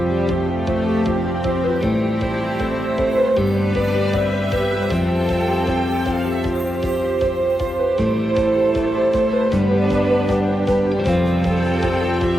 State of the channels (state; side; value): normal; both; correlation 0.88